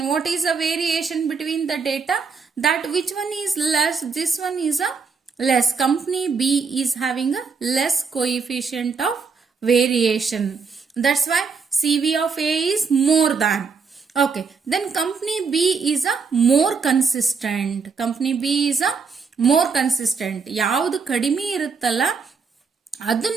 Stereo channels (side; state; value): left; quieter; 5.2 dB